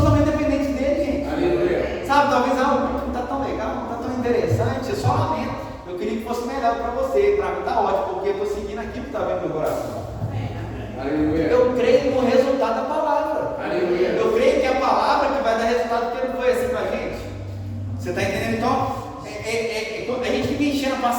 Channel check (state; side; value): identical; both; correlation 1.00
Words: dependentes dele, gente. Aleluia. Sabe, talvez não está tão legal, não está tão interessante, eu só lamento. Eu queria que fosse melhor para você, para mim está ótimo, porque eu estou seguindo aquilo que está vendo no meu coração. Aleluia. Eu creio no resultado da palavra. Aleluia. Eu creio que é a palavra que vai dar resultado, porque não foi assim com a gente. Você está entendendo? Então, a gente fica enchendo a